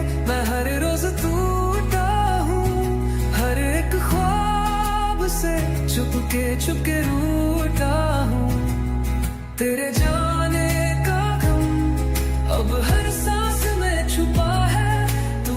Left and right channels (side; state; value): both; identical; correlation 1.00